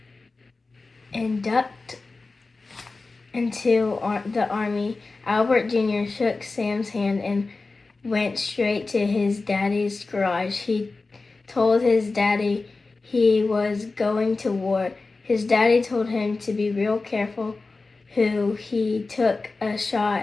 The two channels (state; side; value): quieter; right; 3.7 dB